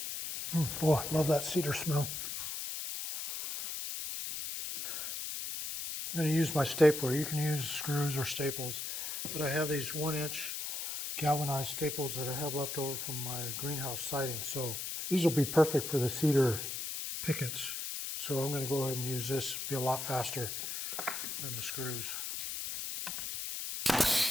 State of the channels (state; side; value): noise; left; hiss, 5 dB below the sound